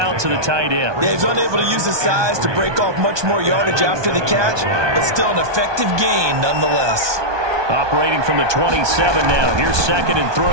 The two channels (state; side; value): late; left; 1.2 ms